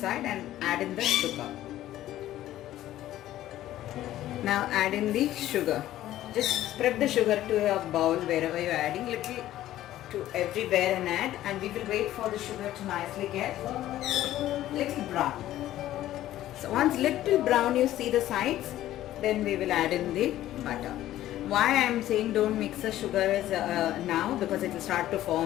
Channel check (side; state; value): right; quieter; 13.8 dB